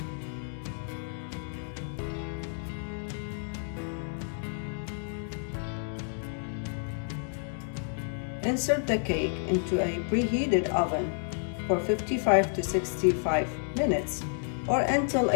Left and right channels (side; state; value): right; silent; digital silence